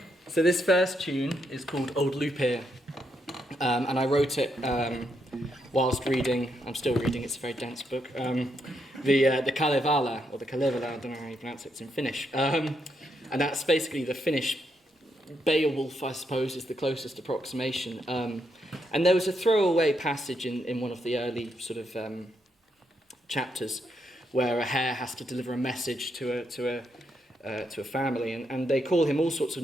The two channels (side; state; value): both; normal; correlation 0.79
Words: So this first tune is called Old Lupir, and I wrote it whilst reading, I'm still reading, it's a very dense book, the Kalevala, or the Kalevala, I don't know how you pronounce it, it's in Finnish. And that's basically the Finnish Beowulf, I suppose, is the closest approximation. And there was a throwaway passage in one of the early sort of chapters where a hare has to deliver a message to a family, and they call him all sorts of